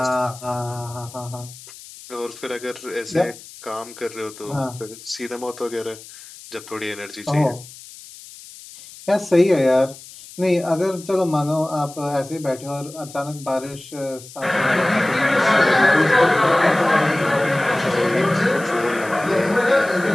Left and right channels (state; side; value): noise; left; hiss, 18 dB below the sound